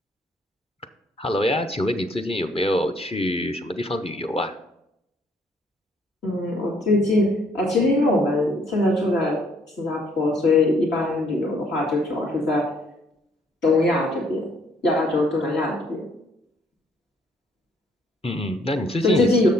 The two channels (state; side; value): normal; both; correlation 0.65